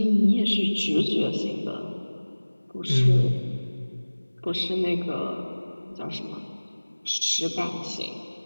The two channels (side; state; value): both; inverted; correlation -1.00